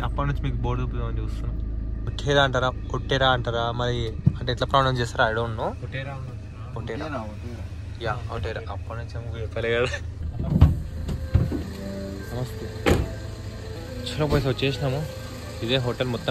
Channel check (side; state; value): both; identical; correlation 1.00